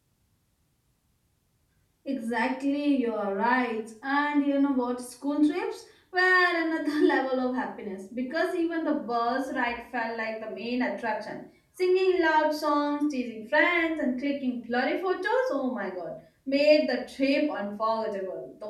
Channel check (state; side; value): identical; both; correlation 1.00